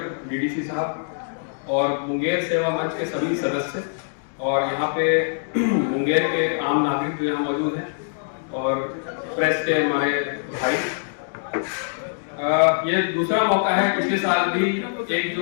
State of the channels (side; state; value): right; silent; digital silence